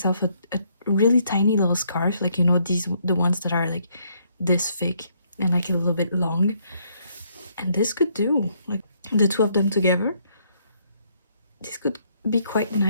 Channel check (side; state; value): both; inverted; correlation -0.70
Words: a really tiny little scarf, like, you know, the ones that are like this thick and like a little bit long. And this could do, like the two of them together. This could be quite